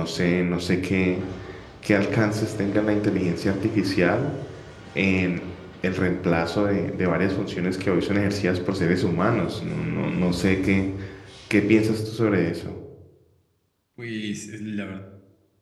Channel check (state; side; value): identical; both; correlation 1.00